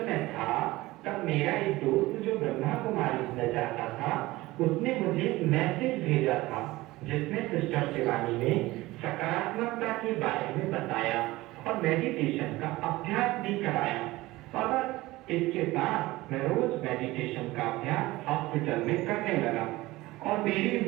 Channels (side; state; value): left; quieter; 19.1 dB